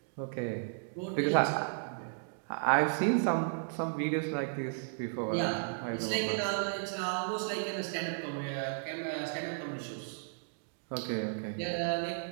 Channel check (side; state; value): left; silent; digital silence